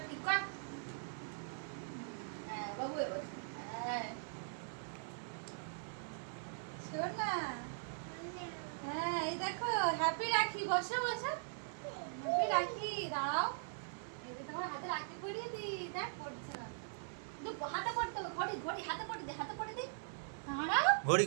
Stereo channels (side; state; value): left; silent; digital silence